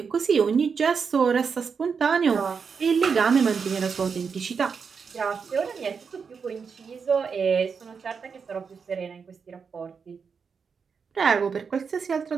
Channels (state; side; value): quieter; left; 5.9 dB